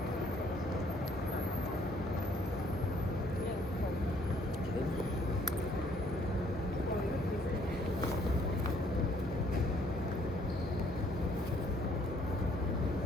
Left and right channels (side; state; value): both; normal; correlation 0.64